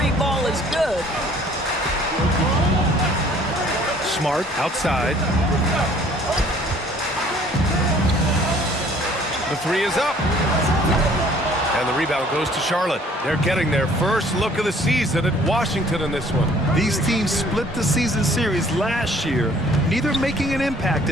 ball is good. Smart outside. The three is up. And the rebound goes to Charlotte. They're getting their first look of the season at Washington in this one. These teams split the season series last year, neither making an impact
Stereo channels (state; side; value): normal; both; correlation 0.56